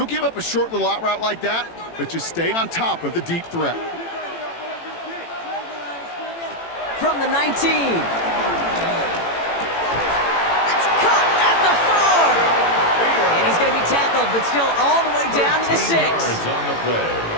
give up a short little out route like that, but just stay on top of the deep threat. From the 19. That's caught at the 4. And he's going to be tackled, but still all the way down to the 6.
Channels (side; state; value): right; late; 18 ms